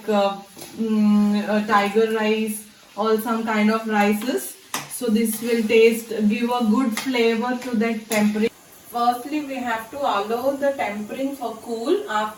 tiger rice or some kind of rices. So this will give a good flavor to that tempering. Firstly, we have to allow the tempering for cool.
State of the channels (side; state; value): both; identical; correlation 1.00